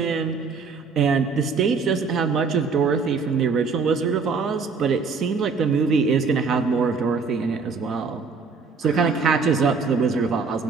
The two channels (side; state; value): left; quieter; 4.9 dB